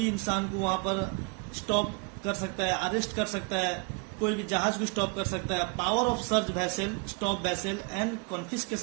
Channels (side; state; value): left; quieter; 32.5 dB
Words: इंसान को वहां पर स्टॉप कर सकता है, अरेस्ट कर सकता है, कोई भी जहाज को स्टॉप कर सकता है। Power of search vessel, stop vessel and